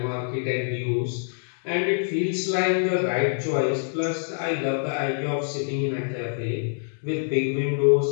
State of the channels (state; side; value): silent; right; digital silence